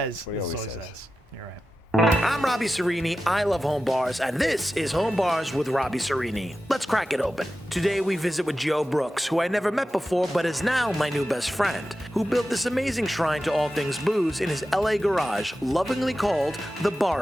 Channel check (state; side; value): normal; both; correlation 0.93